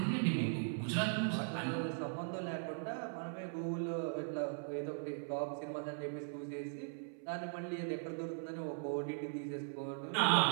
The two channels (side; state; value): left; silent; 51 dB below the other